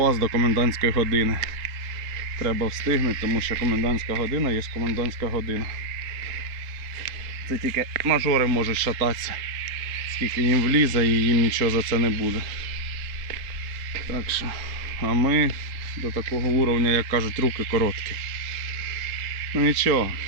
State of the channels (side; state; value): left; late; 3.7 ms